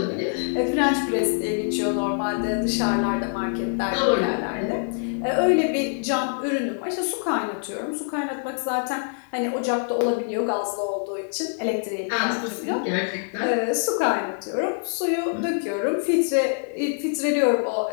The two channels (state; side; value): silent; right; 58 dB below the other